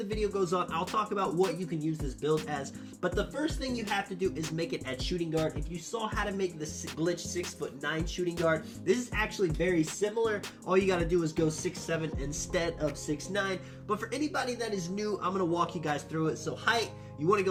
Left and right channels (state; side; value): identical; both; correlation 1.00